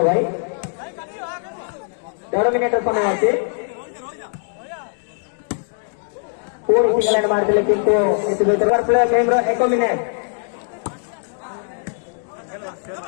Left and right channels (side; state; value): right; silent; 60 dB below the other